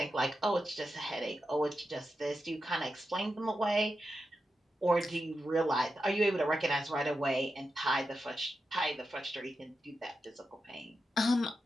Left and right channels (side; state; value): both; normal; correlation 0.89